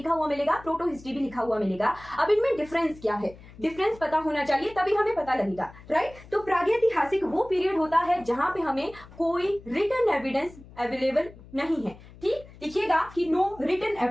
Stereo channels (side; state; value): left; noise; hum, 20 dB below the sound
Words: हुआ मिलेगा, प्रोटो हिस्ट्री भी लिखा हुआ मिलेगा। अब इनमें डिफरेंस क्या है, डिफरेंस पता होना चाहिए, तभी हमें पता लगेगा। राइट, तो प्रागैतिहासिक वो पीरियड होता है जहां पे हमें कोई रिटन एविडेंस अवेलेबल नहीं है। ठीक, लिखिएगा कि नो रिटन